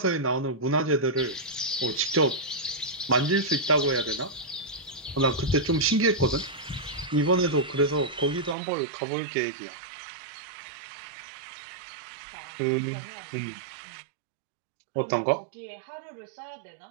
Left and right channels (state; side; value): drops out; left; at 8.6 s